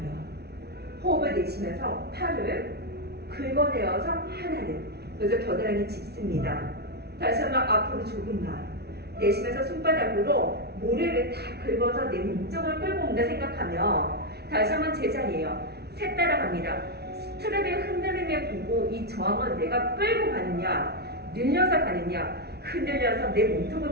호흡을 내쉬면서 팔을 긁어내어서 하나는. 그래서 겨드랑이 짚습니다. 다시 한번 앞으로 조금만. 내쉬면서 손바닥으로 모래를 다 긁어서 내 몸쪽을 끌고 온다 생각하며 다시 한번 제자리에요. 셋 따라갑니다. 스트랩의 흔들림에 보고 이 저항을 내가 끌고 가느냐, 늘려서 가느냐, 흔들려서 내 몸통을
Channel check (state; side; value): late; left; 0.48 ms